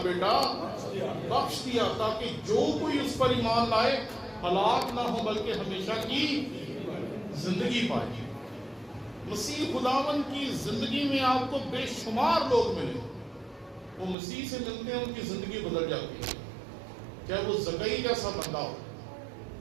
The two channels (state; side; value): drops out; left; at 14.2 s